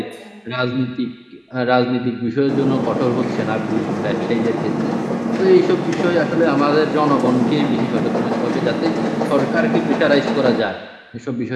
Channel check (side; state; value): both; identical; correlation 1.00